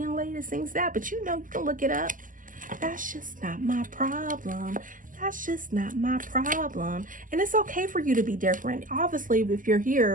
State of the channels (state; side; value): late; left; 0.38 ms